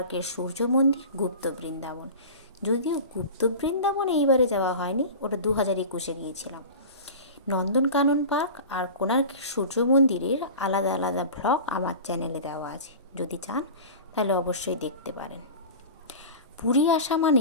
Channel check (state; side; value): inverted; both; correlation -0.34